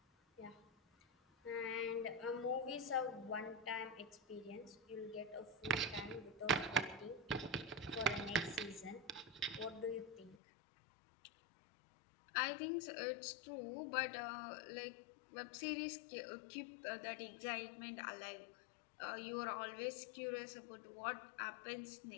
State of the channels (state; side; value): drops out; right; at 10.4 s